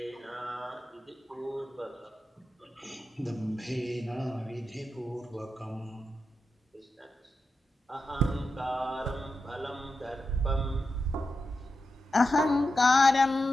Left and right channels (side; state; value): both; normal; correlation 0.89